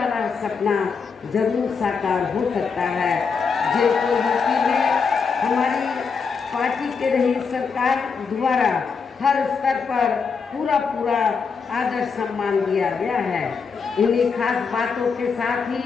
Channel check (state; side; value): quieter; right; 5.5 dB